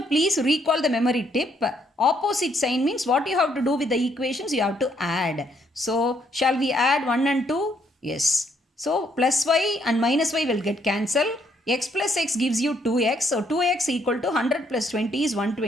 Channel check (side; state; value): both; normal; correlation 0.71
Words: please recall the memory tip. Opposite sign means what you have to do with the equations, you have to add. So shall we add 1 and 2? Yes. So plus y and minus y will get cancelled. X plus x gives you 2x. So 2x equal to 100 plus 20 is